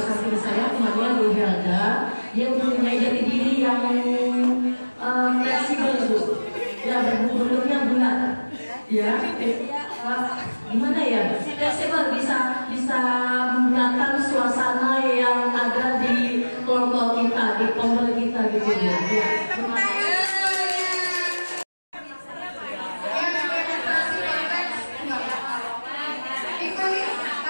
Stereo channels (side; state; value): both; inverted; correlation -1.00